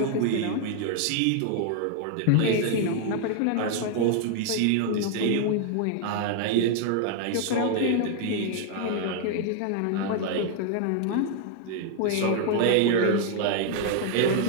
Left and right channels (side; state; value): both; different; correlation 0.00